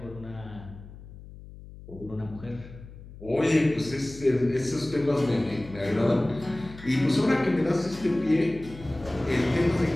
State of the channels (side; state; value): left; noise; hum, 17 dB below the sound